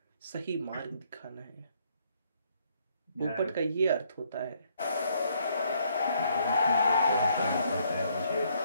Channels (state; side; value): inverted; both; correlation -0.69